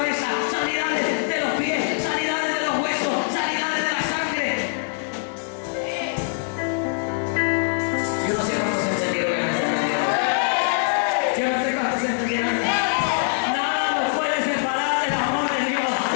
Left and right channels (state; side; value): silent; right; digital silence